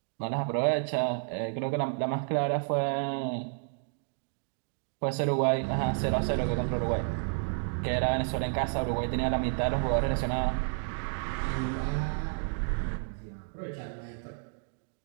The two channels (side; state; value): left; silent; digital silence